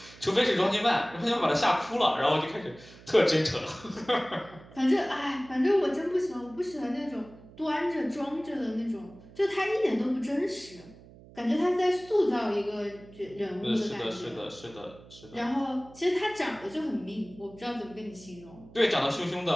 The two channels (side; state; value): right; noise; hum, 21 dB below the sound